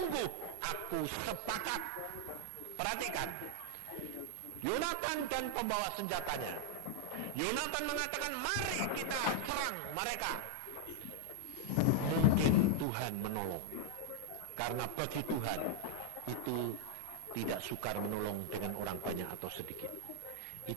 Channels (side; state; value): both; different; correlation 0.00